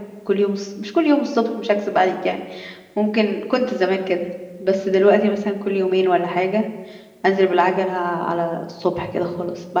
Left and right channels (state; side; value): identical; both; correlation 1.00